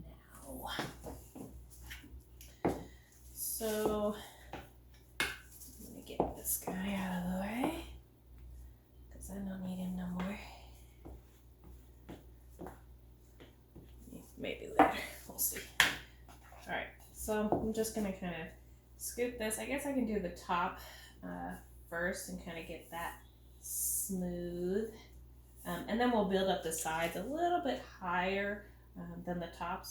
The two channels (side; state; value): both; identical; correlation 1.00